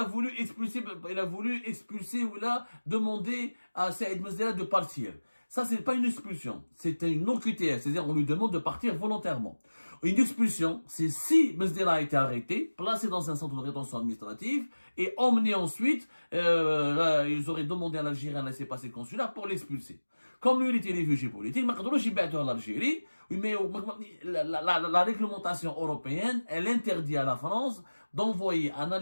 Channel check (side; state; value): both; inverted; correlation -1.00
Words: voulu expulser ou il a demandé à Saïd Mesdera de partir. Ça, c'est pas une expulsion. C'est une OQTF. C'est-à-dire, on lui demande de partir volontairement. Une expulsion, c'est si Mesdera a été arrêté, placé dans un centre de rétention administrative et emmené ensuite, ils auraient demandé à l'Algérien un laissez-passer consulaire pour l'expulser. Comme lui, il était réfugié politique, en Algérie, mais la réglementation européenne, elle interdit à la France d'envoyer un